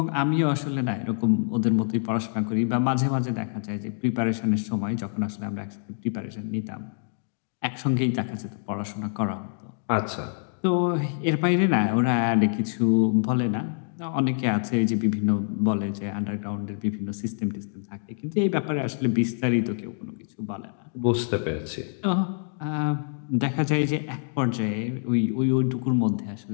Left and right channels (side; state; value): right; silent; digital silence